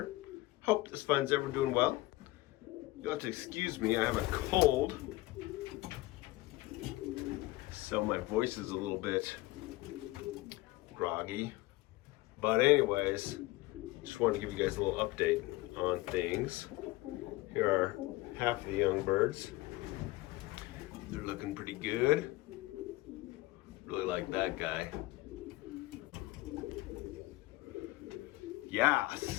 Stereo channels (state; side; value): quieter; right; 19.6 dB